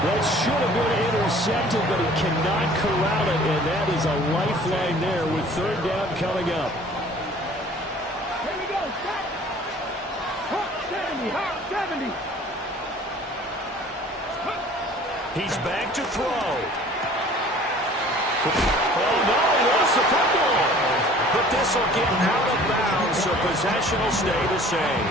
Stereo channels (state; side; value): normal; both; correlation 0.50